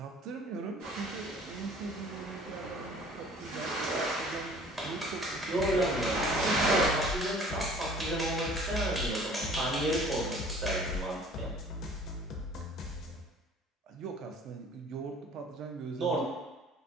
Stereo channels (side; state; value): both; normal; correlation 0.50